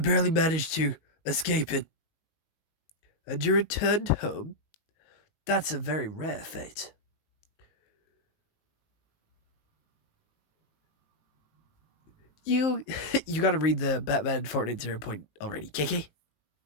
managed to escape it. And you returned home? That's a very rare fate. You you gotta read the Batman Fortnite 0 point already, KK.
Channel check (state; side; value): late; right; 19 ms